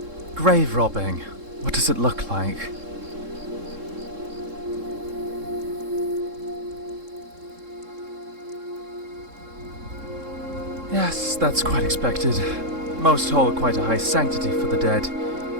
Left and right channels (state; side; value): late; left; 3.7 ms